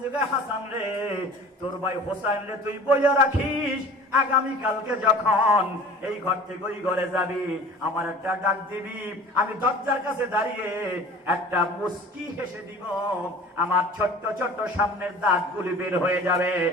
যুগে হাসান রে, তোর ভাই হোসেন রে তুই বইয়া রাখিস, আগামী কালকে যখন এই ঘর থেকে ওই ঘরে যাবি আমার একটা ডাক দিবি, আমি দরজার কাছে দাঁড়িয়ে একটা মুস্কি হেসে দিব, আমার ছোট্ট ছোট্ট সামনের দাঁতগুলি বের হয়ে যাবে,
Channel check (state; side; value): normal; both; correlation 0.43